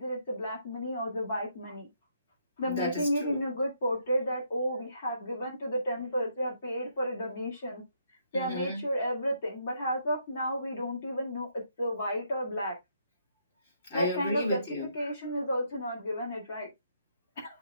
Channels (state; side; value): inverted; both; correlation -0.74